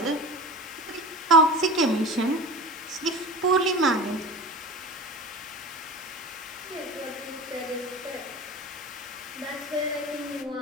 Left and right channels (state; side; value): normal; both; correlation 0.33